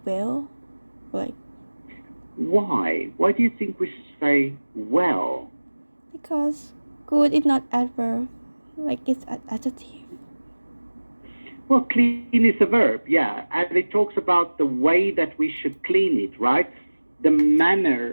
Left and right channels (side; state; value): both; inverted; correlation -1.00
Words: well. Like, why? Why do you think we should say well? because good is not adverb, like it's an adjective. Well, clean is a verb, yeah. And it talks about the way that we should clean it, right? The